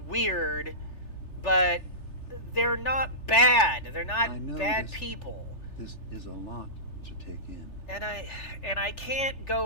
but they're not bad. They're I not know bad this- people. This is a lot to take in. And I can't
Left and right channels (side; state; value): right; late; 3.4 ms